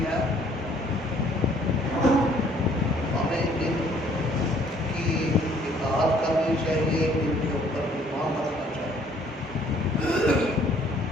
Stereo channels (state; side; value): normal; both; correlation 0.61